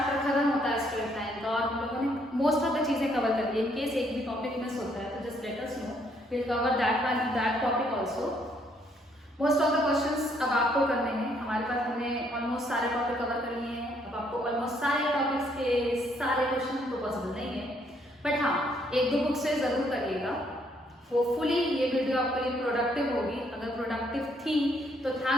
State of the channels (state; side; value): normal; both; correlation 0.69